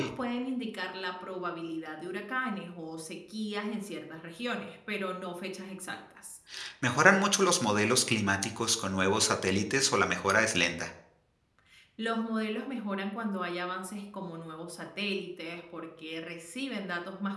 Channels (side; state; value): both; identical; correlation 1.00